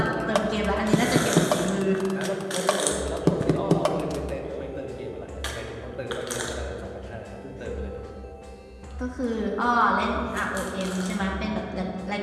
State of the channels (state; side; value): identical; both; correlation 1.00